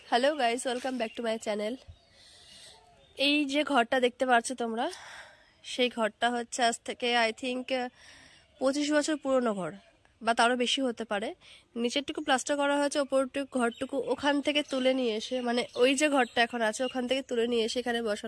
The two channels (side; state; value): both; identical; correlation 1.00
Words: Hello guys, welcome back to my channel. এই যে ঘরটা দেখতে পাচ্ছ তোমরা, সেই ঘরটা হচ্ছে আজ থেকে আই থিঙ্ক 25 বছর পুরনো ঘর, বা তারও বেশি হতে পারে। নিচেরটুকু প্লাস্টার করা হয়েছে, ওপরটুকু ঘরটুকু ওখান থেকে তুলে নিয়ে এসে, মানে ওই যে ঘরটা এখন আছে ওখান থেকে তুলে নিয়ে এসে এখানে